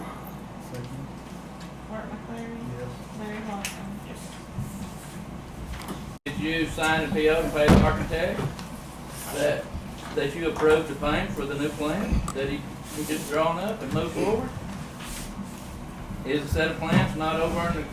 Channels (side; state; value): both; identical; correlation 1.00